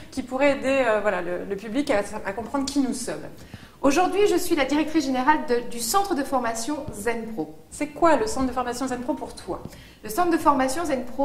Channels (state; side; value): identical; both; correlation 1.00